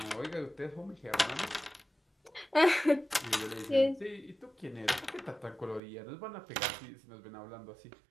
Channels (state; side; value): drops out; left; at 5.8 s